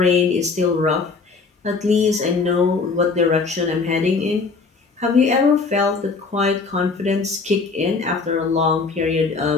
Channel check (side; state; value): right; quieter; 4.4 dB